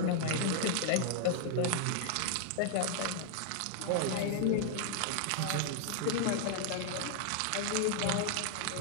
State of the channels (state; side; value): different; both; correlation 0.00